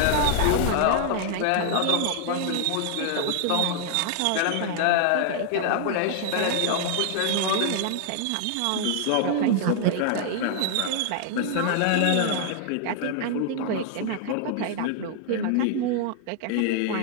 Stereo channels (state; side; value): different; both; correlation 0.00